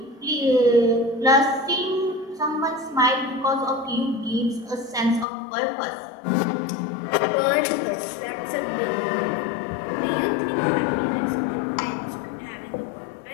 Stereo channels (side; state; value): right; drops out; at 5.2 s